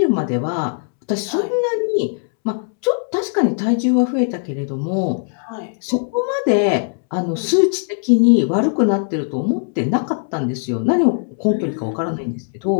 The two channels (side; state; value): right; silent; 66 dB below the other